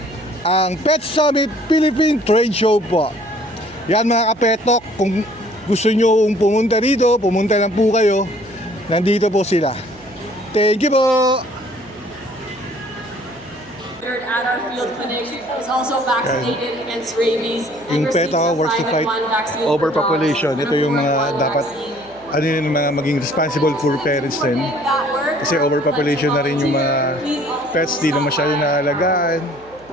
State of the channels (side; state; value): right; noise; hum, 26 dB below the sound